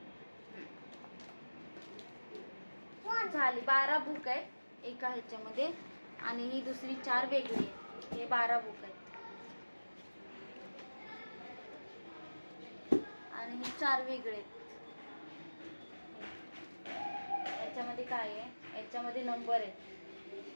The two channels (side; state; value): both; inverted; correlation -1.00